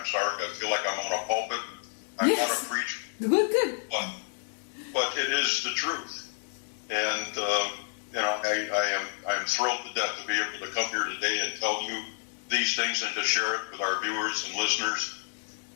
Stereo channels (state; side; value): silent; right; 58 dB below the other